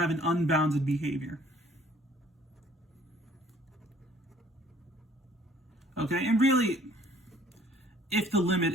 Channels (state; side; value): normal; both; correlation 0.57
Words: an unbounded behavior. Okay, and really, if the limit